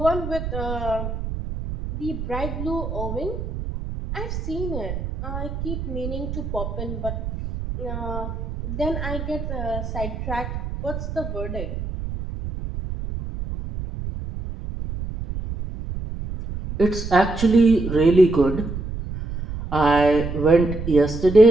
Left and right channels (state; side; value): noise; right; rumble, 6 dB below the sound